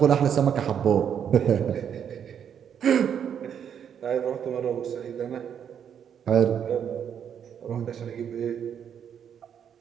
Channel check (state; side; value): quieter; left; 8.4 dB